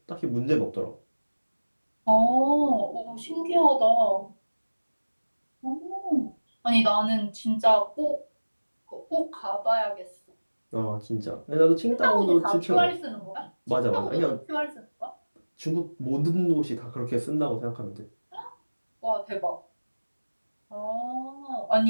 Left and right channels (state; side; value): inverted; both; correlation -1.00